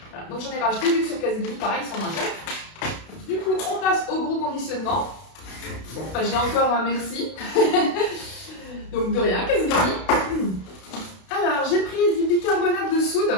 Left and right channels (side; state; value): right; late; 32 ms